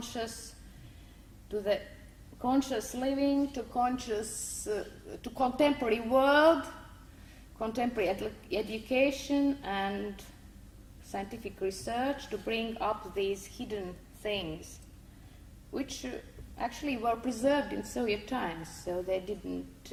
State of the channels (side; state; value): both; identical; correlation 1.00